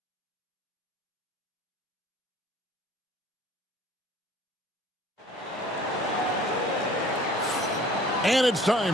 And it's time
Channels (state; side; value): normal; both; correlation 0.52